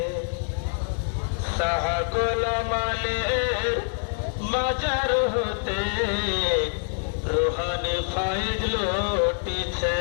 শাহ গোলাম আলীর মাজার হতে রুহানি ফাইদ লুটিছে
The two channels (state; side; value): silent; right; 61 dB below the other